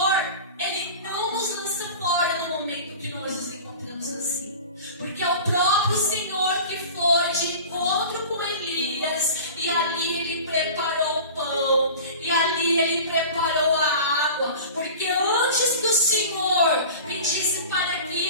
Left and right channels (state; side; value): inverted; both; correlation -0.37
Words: Ele não nos lança fora no momento que nós nos encontramos assim, porque é o próprio Senhor que foi de encontro com Elias, e ali Ele preparou o pão, e ali Ele preparou a água, porque antes que o Senhor pedisse para que